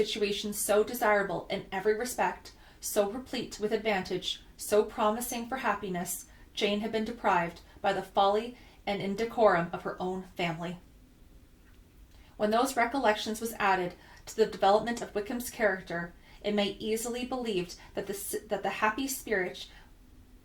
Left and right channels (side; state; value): both; identical; correlation 1.00